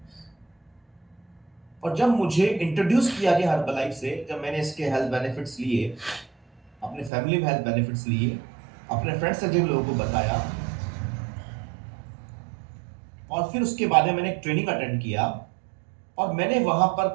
और जब मुझे इंट्रोड्यूस किया गया हर्बलाइफ से, जब मैंने इसके हेल्थ बेनिफिट्स लिए, अपने फैमिली में हेल्थ बेनिफिट्स लिए, अपने फ्रेंड्स से जिन लोगों को बताया, और फिर उसके बाद में मैंने एक ट्रेनिंग अटेंड किया, और मैंने वहां पर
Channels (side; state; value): left; drops out; at 7.1 s